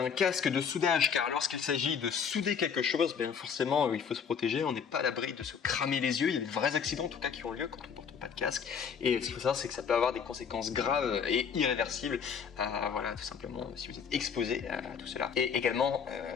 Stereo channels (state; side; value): quieter; right; 6.8 dB